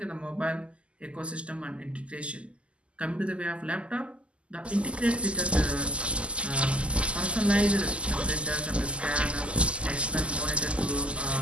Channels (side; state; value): left; late; 0.055 ms